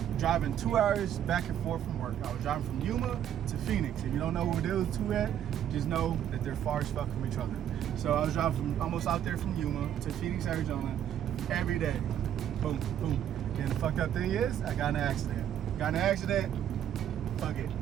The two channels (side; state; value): left; quieter; 10.2 dB